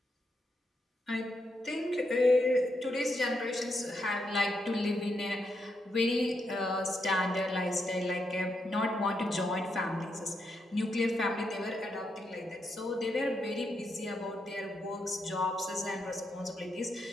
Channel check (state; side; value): normal; both; correlation 0.81